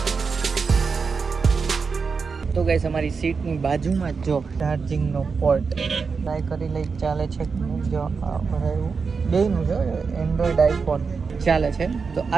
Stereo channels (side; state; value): left; quieter; 5.1 dB